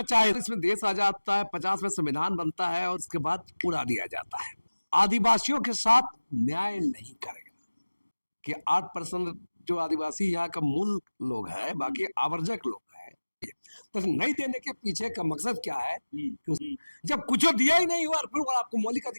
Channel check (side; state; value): both; inverted; correlation -1.00